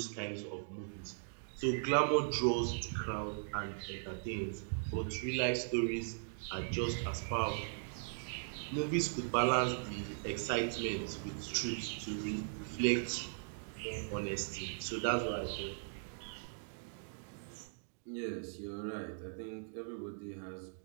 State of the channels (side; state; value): left; silent; digital silence